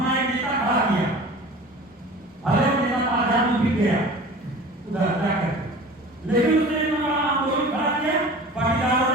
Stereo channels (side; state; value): both; normal; correlation 0.40